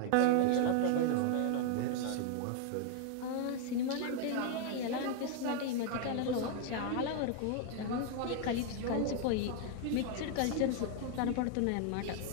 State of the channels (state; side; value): different; both; correlation 0.00